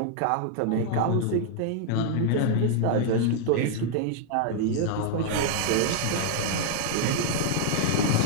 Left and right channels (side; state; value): both; different; correlation -0.01